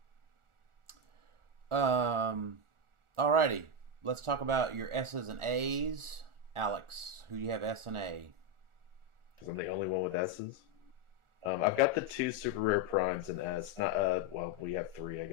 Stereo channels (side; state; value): left; late; 1.4 ms